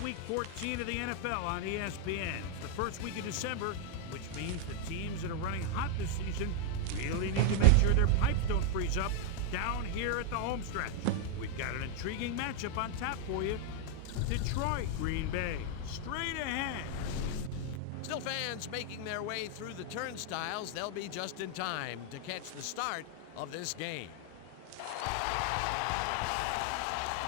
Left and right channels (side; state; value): both; different; correlation 0.00